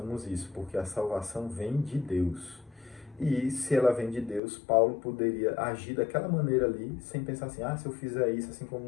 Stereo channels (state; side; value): drops out; right; at 4.4 s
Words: isso, porque a salvação vem de Deus. E se ela vem de Deus, Paulo poderia agir daquela maneira ali, sem pensar assim: se eu fizer isso, assim como